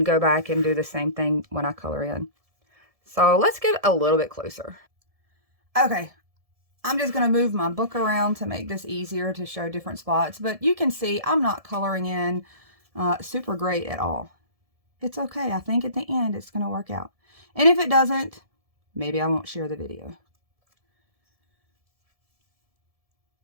go back and do the same thing when I color in. So let's get a little bit closer. Okay, I'm just going to move my book around to make this easier to show different spots, but you can see I'm not coloring in super great at all. It's okay. I think at the end it's going to work out. And if it doesn't, maybe I won't share the video.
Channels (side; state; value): left; late; 1.7 ms